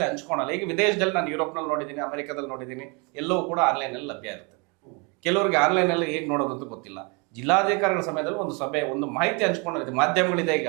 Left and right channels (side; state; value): left; quieter; 31.7 dB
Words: ಹಂಚ್ಕೊಳಲ್ಲ. ಈಗ ವಿದೇಶದಲ್ಲಿ ನಾನು ಯುರೋಪ್ನಲ್ಲಿ ನೋಡಿದ್ದೀನಿ, ಅಮೆರಿಕದಲ್ಲಿ ನೋಡಿದ್ದೀನಿ, ಎಲ್ಲವೂ ಕೂಡ ಆನ್ಲೈನಲ್ಲಿ ಲಭ್ಯ ಇರುತ್ತೆ. ಕೆಲವರಿಗೆ ಆನ್ಲೈನಲ್ಲಿ ಹೇಗೆ ನೋಡೋದಂತ ಗೊತ್ತಿಲ್ಲ. ಜಿಲ್ಲಾಧಿಕಾರಿಗಳ ಸಮಯದಲ್ಲಿ ಒಂದು ಸಭೆ, ಒಂದು ಮಾಹಿತಿ ಹಂಚ್ಕೊಂಡಿದೆ, ಮಾಧ್ಯಮಗಳಿದೆ. ಈಗ